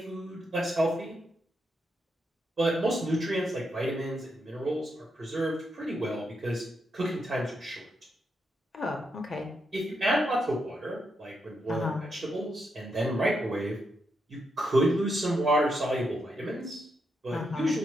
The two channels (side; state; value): both; normal; correlation 0.82